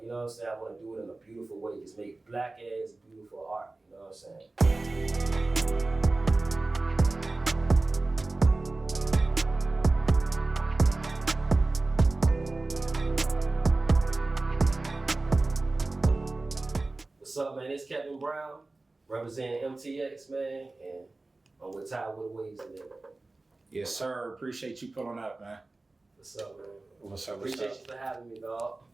you know what I'm saying, I want to do it in a beautiful way. Just make black ass beautiful art, you know what I'm saying? What's up, man? It's Kevin Brown, representing MTX, man, and I'm with Ty with the Waves today. Yes, sir. Appreciate you pulling up, man. What's up, man? What's up? Appreciate you for having me, dog.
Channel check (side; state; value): left; quieter; 3.2 dB